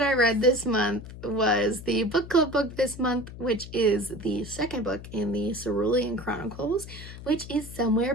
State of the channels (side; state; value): left; noise; hum, 13 dB below the sound